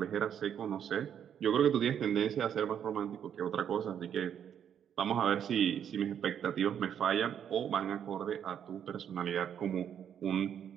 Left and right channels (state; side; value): quieter; left; 8.9 dB